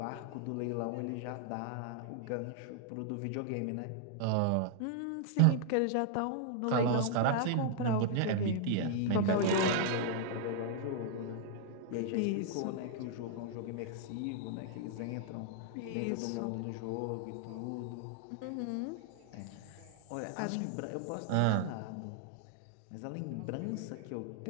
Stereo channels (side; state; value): both; different; correlation 0.00